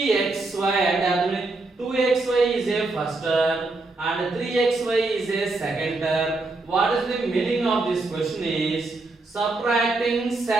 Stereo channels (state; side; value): quieter; left; 3.3 dB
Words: and 2xy is a first term and 3xy is a second term. What is the meaning of this question is subtracting